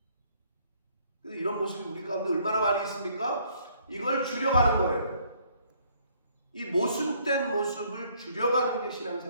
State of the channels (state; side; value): inverted; both; correlation -0.64